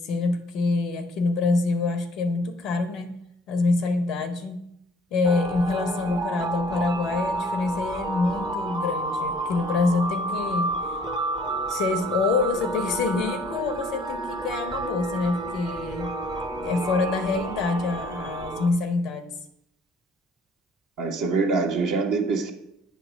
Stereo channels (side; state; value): both; normal; correlation 0.57